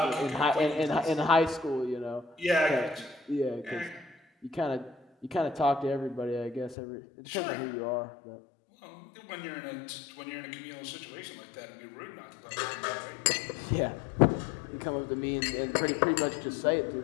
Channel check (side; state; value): right; drops out; at 6.8 s